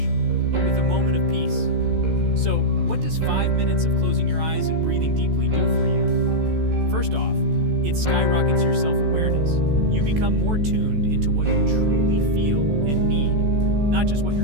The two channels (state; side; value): late; left; 14 ms